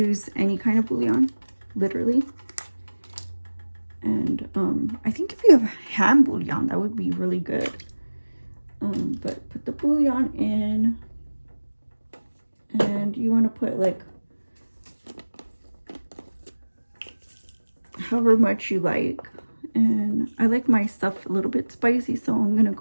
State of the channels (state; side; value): inverted; both; correlation -1.00